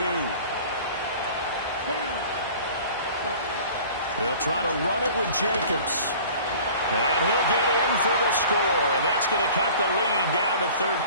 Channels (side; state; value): both; inverted; correlation -0.45